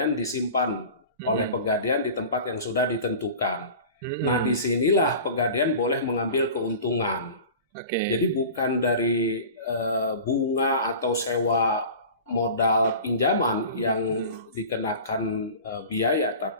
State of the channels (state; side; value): inverted; both; correlation -0.37